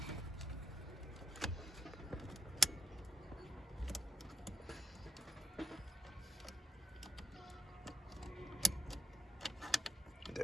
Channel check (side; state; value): both; normal; correlation 0.78